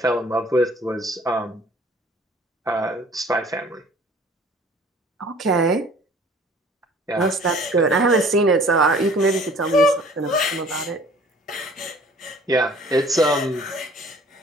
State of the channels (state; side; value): normal; both; correlation 0.51